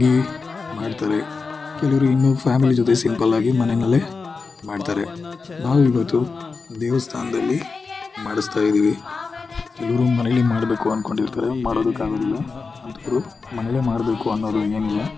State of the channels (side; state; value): right; quieter; 4.5 dB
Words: ಮಾಡ್ತಾರೆ, ಕೆಲವರು ಇನ್ನೂ ಫ್ಯಾಮಿಲಿ ಜೊತೆ ಸಿಂಪಲ್ಲಾಗಿ ಮನೆಯಲ್ಲೇ ಮಾಡ್ತಾರೆ. ನಾವು ಇವತ್ತು ದೇವಸ್ಥಾನದಲ್ಲಿ ಮಾಡಿಸ್ತಾ ಇದ್ದೀವಿ. ಕೆಲವರು ಮನೇಲಿ ಮಾಡಬೇಕು ಅಂದ್ಕೊಂಡಿರ್ತಾರೆ, ಮಾಡೋದಕ್ಕಾಗೋದಿಲ್ಲ. ಅಂಥವರು ಮನೇಲೇ ಮಾಡಬೇಕು ಅನ್ನೋದು ಏನಿಲ್ಲ,